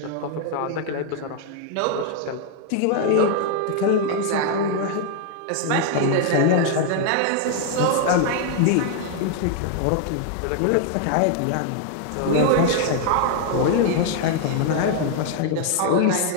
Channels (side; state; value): both; different; correlation 0.00